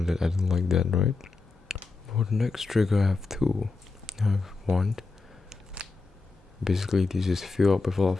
that I don't like that, right? For the next trigger I have two. I have one. Basically this is fill up with a lot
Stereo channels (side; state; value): right; quieter; 3.9 dB